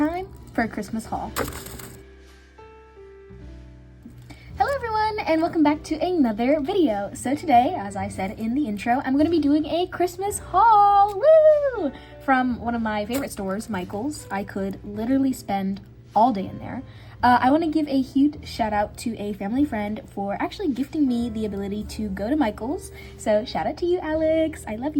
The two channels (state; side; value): identical; both; correlation 1.00